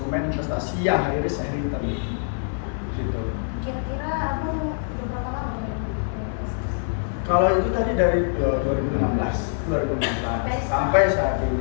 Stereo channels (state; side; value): silent; right; digital silence